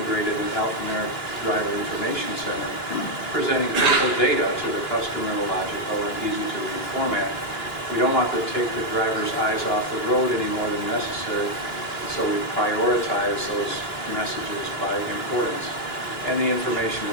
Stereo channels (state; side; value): late; right; 2.9 ms